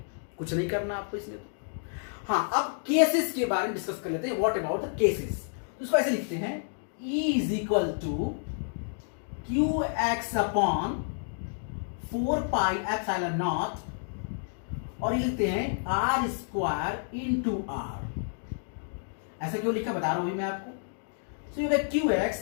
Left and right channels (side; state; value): right; silent; digital silence